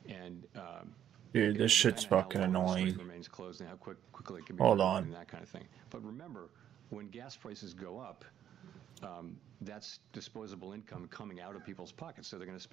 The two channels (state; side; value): quieter; left; 10.2 dB